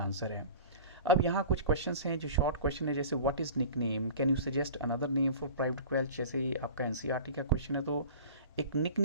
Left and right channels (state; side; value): inverted; both; correlation -0.39